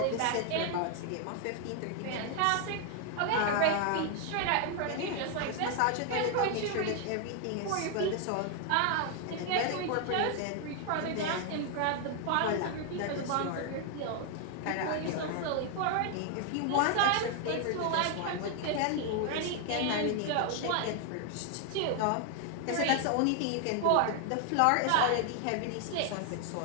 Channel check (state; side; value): different; both; correlation 0.00